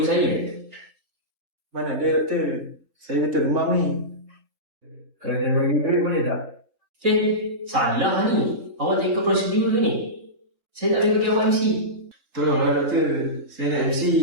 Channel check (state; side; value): late; left; 3.6 ms